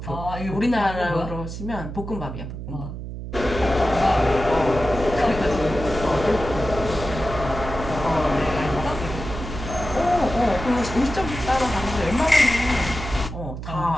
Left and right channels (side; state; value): right; noise; hum, 8 dB below the sound